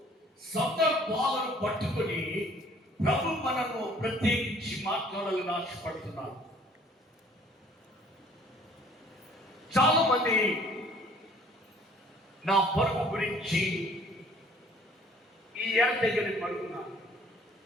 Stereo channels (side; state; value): both; normal; correlation 0.56